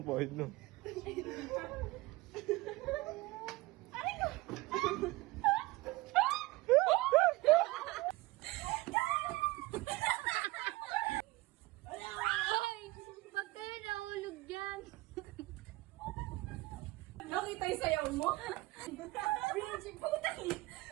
pahit no? Pag kayo nahulog dyan. Nakita yung sayaw mo? Binji, putang yun.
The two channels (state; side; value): quieter; left; 20.7 dB